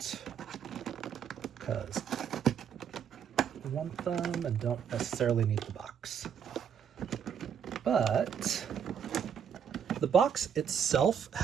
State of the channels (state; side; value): quieter; left; 7.9 dB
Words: because I want them and don't necessarily need the box. But the box itself